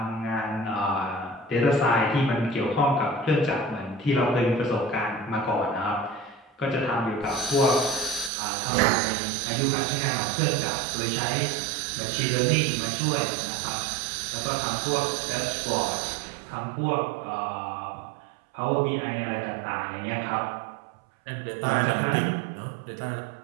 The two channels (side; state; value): left; drops out; at 8.3 s